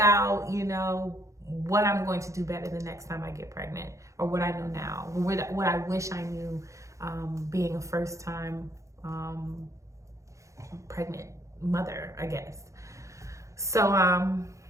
you know, what I'm going to do better the next time I get pregnant, or what I know now, what I wish I knew being a first time pregnant mother, I guess. So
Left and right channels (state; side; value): late; left; 0.15 ms